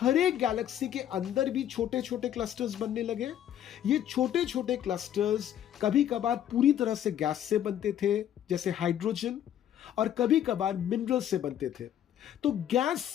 एक गैलेक्सी के अंदर भी छोटे छोटे क्लस्टर्स बनने लगे। ये छोटे छोटे क्लस्टर्स कभी कभार पूरी तरह से गैस से बनते थे जैसे हाइड्रोजन, और कभी कभार मिनरल से बनते थे। तो गैस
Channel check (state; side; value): quieter; right; 10.7 dB